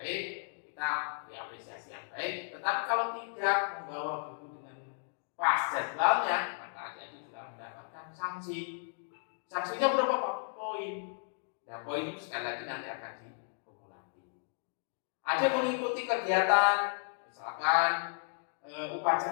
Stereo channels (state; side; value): silent; right; digital silence